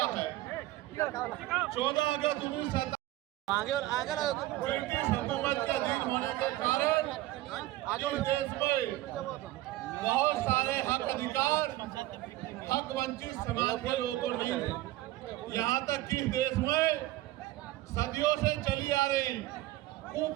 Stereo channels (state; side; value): quieter; left; 16.7 dB